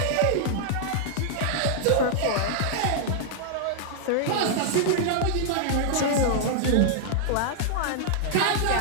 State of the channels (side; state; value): both; different; correlation -0.01